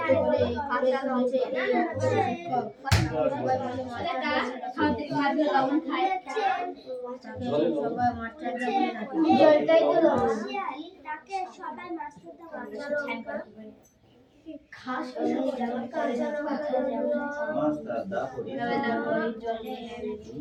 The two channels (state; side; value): identical; both; correlation 1.00